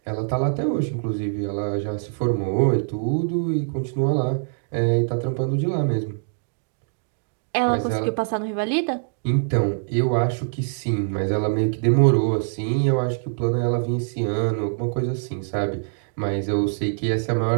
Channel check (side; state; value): left; silent; digital silence